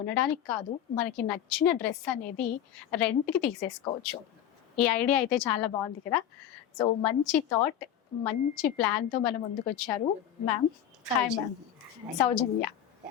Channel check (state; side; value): quieter; right; 10.3 dB